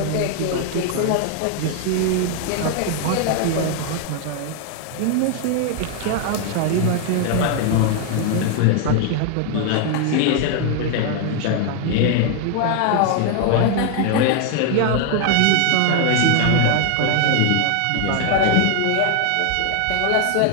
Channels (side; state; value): both; different; correlation 0.00